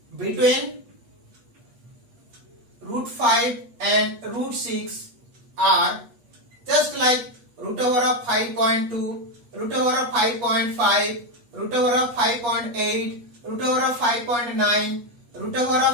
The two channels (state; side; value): late; left; 8.4 ms